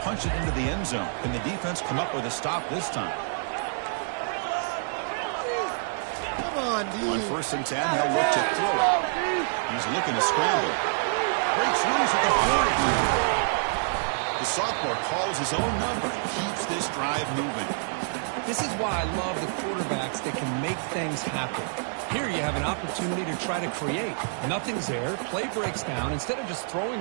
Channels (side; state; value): left; silent; 60 dB below the other